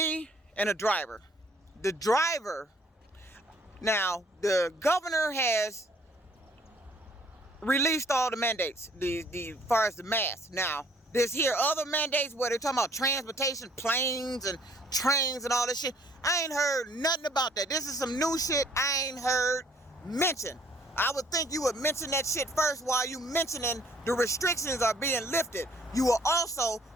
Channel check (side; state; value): both; normal; correlation 0.60